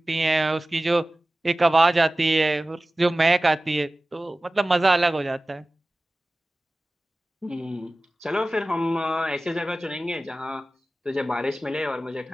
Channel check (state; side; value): normal; both; correlation 0.97